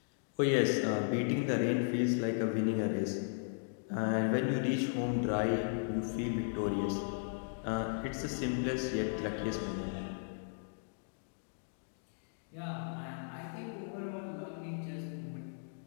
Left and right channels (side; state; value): right; silent; digital silence